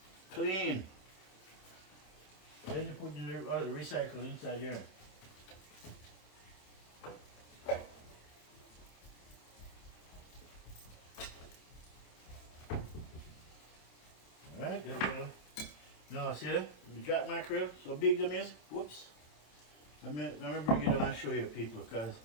Clean. Then you put the recycle inside here. Alright, there we go. Now see that? The jack mackerel, so big them is. Whoops. Let me bring it down and show you people, because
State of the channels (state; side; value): late; right; 27 ms